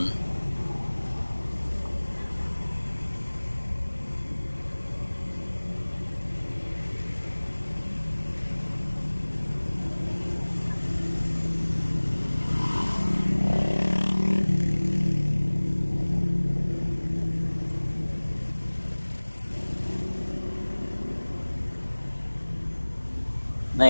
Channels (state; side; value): inverted; both; correlation -1.00